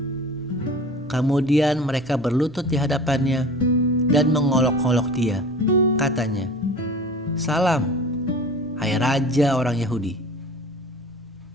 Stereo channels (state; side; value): normal; both; correlation 0.39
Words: Kemudian mereka berlutut di hadapannya dan mengolok-olok dia. Katanya, "Salam, hai Raja orang Yahudi."